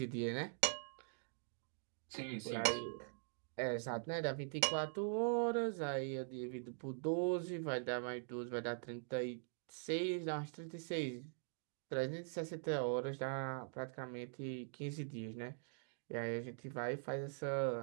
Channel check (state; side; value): silent; left; digital silence